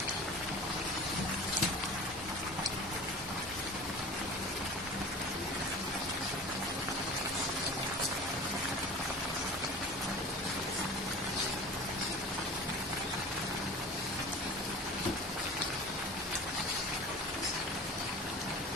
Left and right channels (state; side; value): normal; both; correlation 0.38